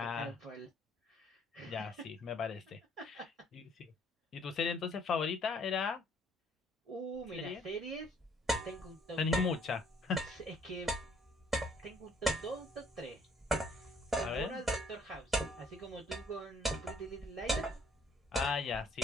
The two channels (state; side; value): normal; both; correlation 0.62